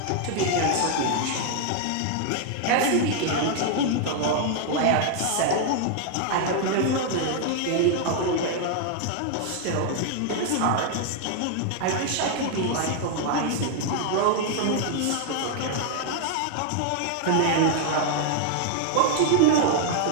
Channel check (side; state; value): both; different; correlation 0.00